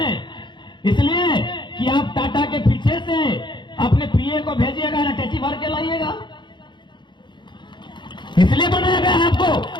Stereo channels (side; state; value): right; late; 0.22 ms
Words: इसलिए कि आप टाटा के पीछे से अपने पीए को भेजिएगा, अटैची भर के लाइएगा। इसलिए बनाया गया आपको